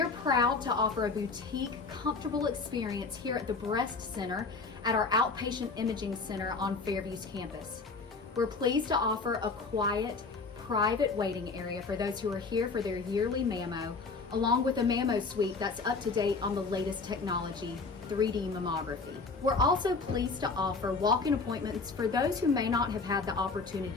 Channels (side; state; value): right; quieter; 4.3 dB